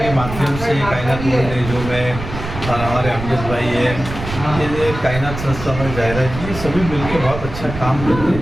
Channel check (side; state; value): right; noise; rumble, 8 dB below the sound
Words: माध्यम से कायनात बोलने जो मैं और हमारे अमजद भाई है, ये कायनात संस्था में जाहिरा जी सभी मिलकर बहुत अच्छा काम करते